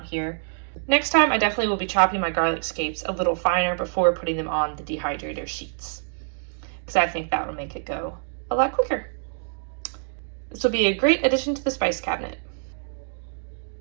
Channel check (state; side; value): silent; left; digital silence